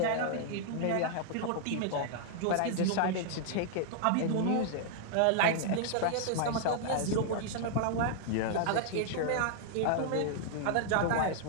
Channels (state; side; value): different; both; correlation 0.00